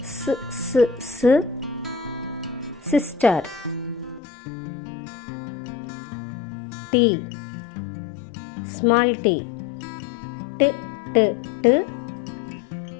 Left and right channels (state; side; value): drops out; right; at 4.2 s